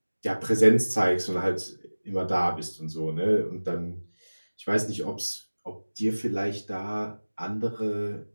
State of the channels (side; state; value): both; inverted; correlation -1.00